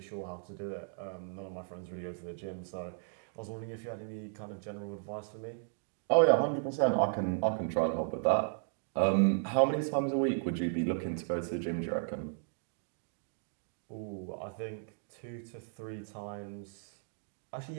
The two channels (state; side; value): silent; left; digital silence